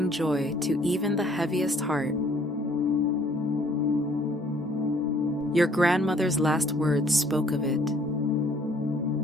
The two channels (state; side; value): normal; both; correlation 0.60